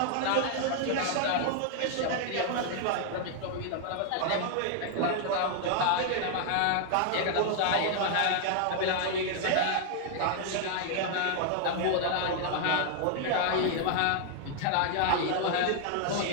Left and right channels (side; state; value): both; different; correlation 0.00